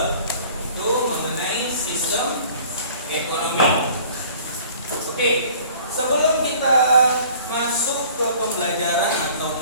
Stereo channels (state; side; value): inverted; both; correlation -0.50